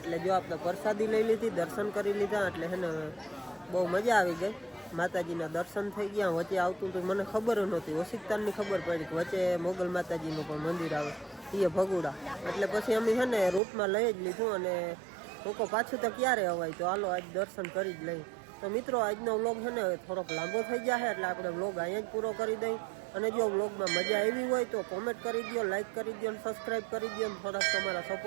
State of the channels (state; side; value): drops out; left; at 13.6 s